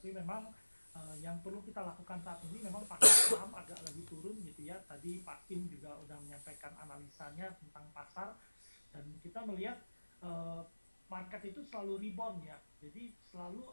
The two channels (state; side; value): inverted; both; correlation -1.00